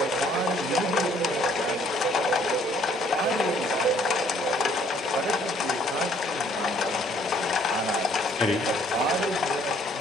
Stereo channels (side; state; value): both; normal; correlation 0.62